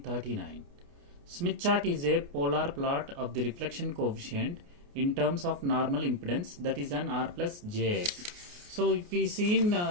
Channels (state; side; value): late; left; 29 ms